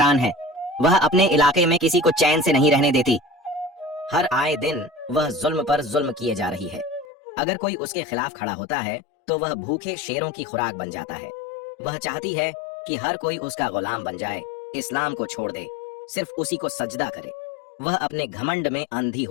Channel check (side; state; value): right; drops out; at 7.1 s